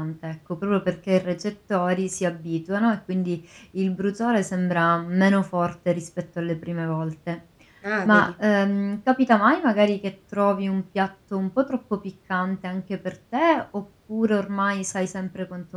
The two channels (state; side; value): identical; both; correlation 1.00